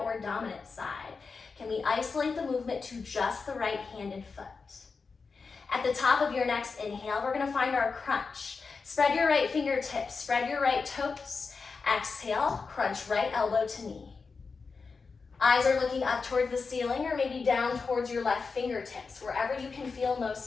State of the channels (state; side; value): quieter; right; 4.7 dB